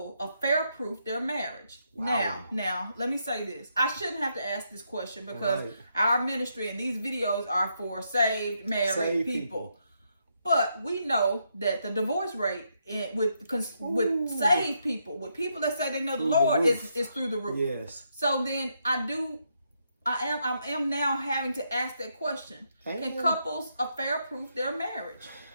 affair-proof their marriage? Wow. Now, let me say this. I shouldn't have to ask this question because our ministry and these videos are for saved, married people. But we know that the divorce rate with saved people, with people that say they know the Lord, is through the roof. Yes. So then I am now having to ask that question. Can couples affair-proof their marriage?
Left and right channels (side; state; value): both; inverted; correlation -0.78